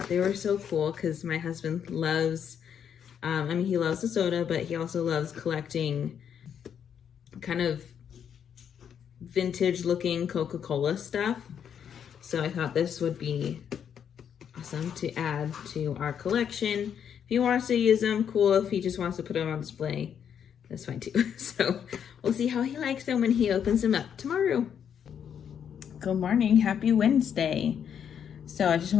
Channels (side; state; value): right; quieter; 8.3 dB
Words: they were so cool because my husband loves, he loves the soda, but he also loves collecting kind of vintage looking Coca-Cola stuff. So I thought this would be awesome to add to our collection. If he wants to use them, cool. If he just wants to put them on display, that's fine too. So we'll see how he likes them when he opens them up tomorrow. Good morning, happy Wednesday. So I just